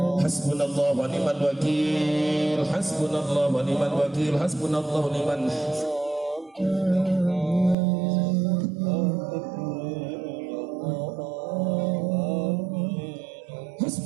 حسبنا الله ونعم الوكيل حسبنا الله ونعم الوكيل حسبنا الله ونعم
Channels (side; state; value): left; drops out; at 7.8 s